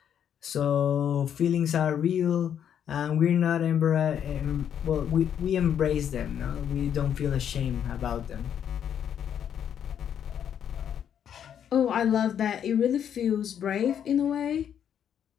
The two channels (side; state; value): right; quieter; 9.0 dB